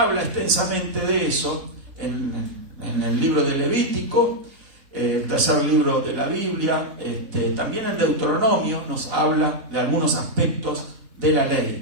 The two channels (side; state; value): left; late; 4.0 ms